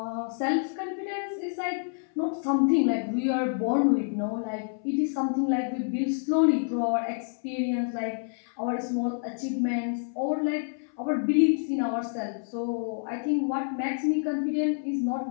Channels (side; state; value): right; silent; 59 dB below the other